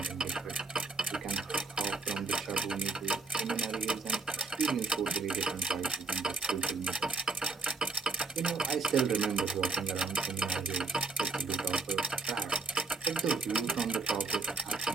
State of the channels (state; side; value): quieter; left; 4.0 dB